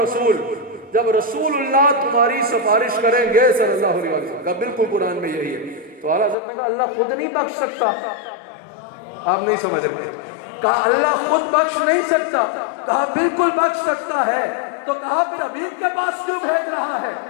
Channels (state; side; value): drops out; right; at 6.4 s